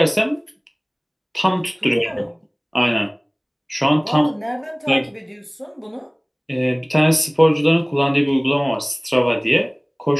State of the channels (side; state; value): both; identical; correlation 1.00